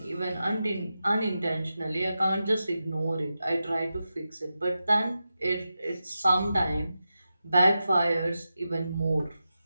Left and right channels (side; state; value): both; inverted; correlation -0.91